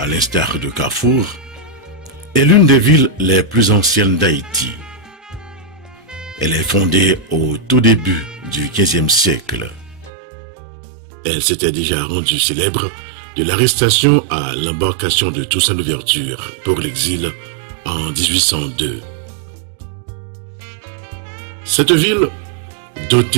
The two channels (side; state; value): left; drops out; at 10.1 s